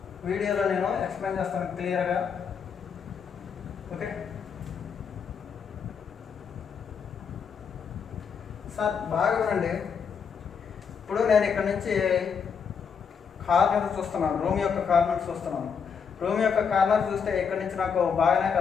వీడియోలో నేను ఎక్స్ప్లెయిన్ చేస్తాను క్లియర్గా. ఓకే సార్, బాగా వినండి. ఇప్పుడు నేను ఇక్కడ నుంచి కార్నర్ చూస్తున్నాను, రూమ్ యొక్క కార్నర్ చూస్తున్నాను. రూమ్ యొక్క కార్నర్ చూస్తే ఇక్కడ నుంచి నాకు బాగానే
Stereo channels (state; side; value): quieter; right; 6.5 dB